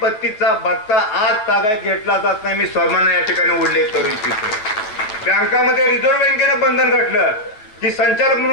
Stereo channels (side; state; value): right; late; 9.3 ms